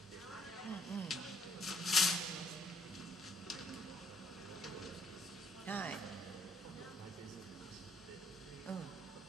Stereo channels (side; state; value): both; normal; correlation 0.66